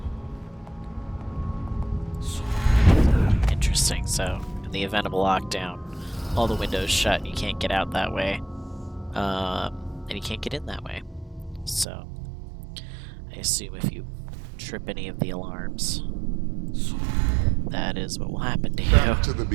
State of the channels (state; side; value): drops out; left; at 11.9 s